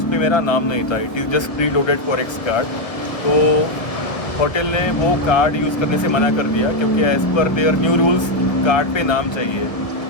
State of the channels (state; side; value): late; right; 1.4 ms